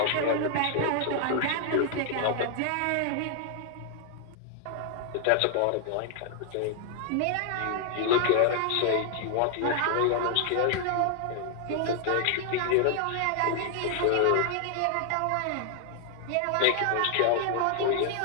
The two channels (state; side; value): different; both; correlation 0.00